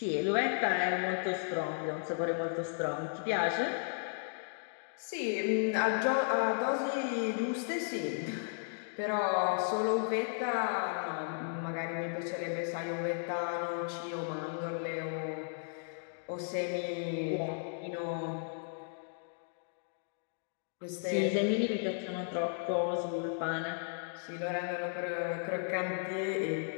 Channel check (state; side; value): silent; right; digital silence